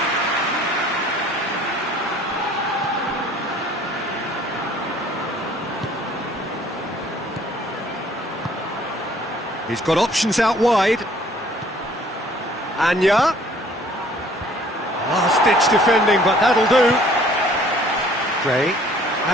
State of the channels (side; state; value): both; normal; correlation 0.56